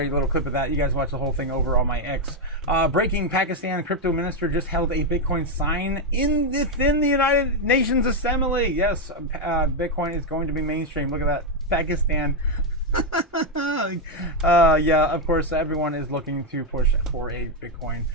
you a little clip of that. You guys watch the whole thing over on my X. Breaking: Pakistan crypto minister just held a Bitcoin sign within the United Nations Assembly. Yes, Bitcoin is going to be mainstream. Look at that, Pakistan. Yeah, of course, everyone is looking to push for a Bitcoin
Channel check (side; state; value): both; normal; correlation 0.03